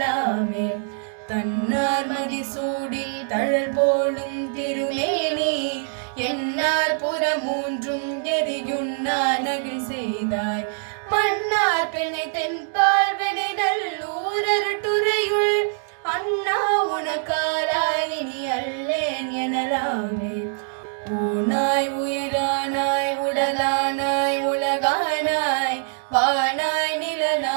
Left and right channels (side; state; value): left; silent; digital silence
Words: தன்னார் மதிசூடில் தழல் போலும் திருமேனி என்னார் புறமூன்றும் எரியுண்ணா நகில் செய்தாய் மன்னார் பெண்ணை தென்பால் வெணை நல்லூர் அருட்டுரையுள் அண்ணா உனக்காலாயினி அல்லேன் எனலாமே ஊனாய் உயிரானாய் உடலானாய் உலகானாய் வானாய்